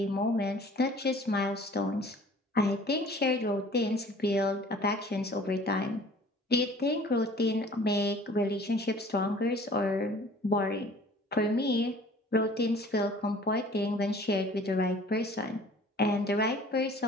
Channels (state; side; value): normal; both; correlation 0.50